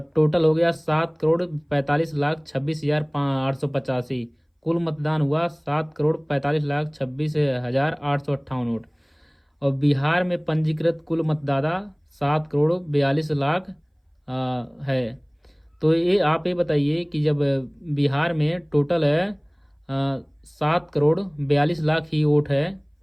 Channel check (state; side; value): identical; both; correlation 1.00